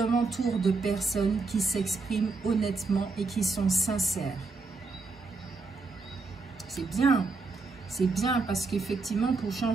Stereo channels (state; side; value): quieter; left; 4.0 dB